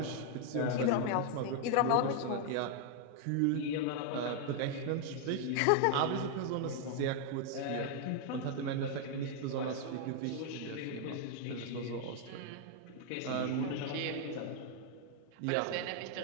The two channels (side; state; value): both; different; correlation 0.00